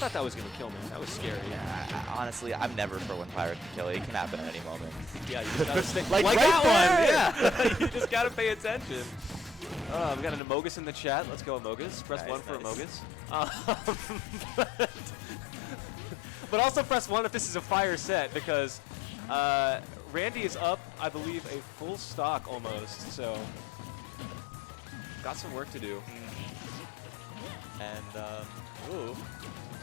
that was going to kill me. That was scary. Honestly, I'm never for when Pyro can kill. It can happen at any moment. Yeah, you just gotta stay Like that right one. Yeah, you just gotta pay attention. We got an Amogus in the chat. Let's go Amogus. Press Nice, 1 for nice. Amogus. But also press 1 if this is a fire set, because Randy is up, I believe, a full stock almost. So got some work to do. And ooh,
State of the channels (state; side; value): drops out; right; at 10.4 s